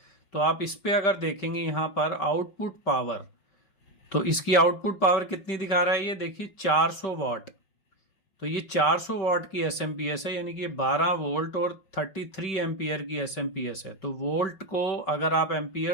तो आप इस पे अगर देखेंगे यहाँ पर आउटपुट पावर, तो इसकी आउटपुट पावर कितनी दिखा रहा है ये देखिए 400 वॉट। तो ये 400 वॉट की एसएमपीएस है, यानी कि 12 वोल्ट और 33 एम्पियर की एसएमपीएस है। तो वोल्ट को अगर आप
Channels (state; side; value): late; right; 5.2 ms